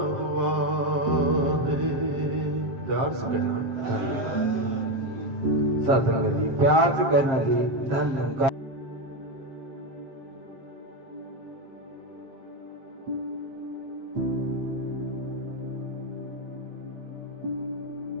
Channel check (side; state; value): left; late; 7.5 ms